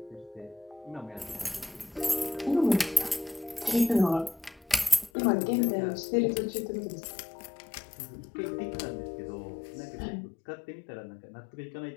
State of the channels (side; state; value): right; drops out; at 5.1 s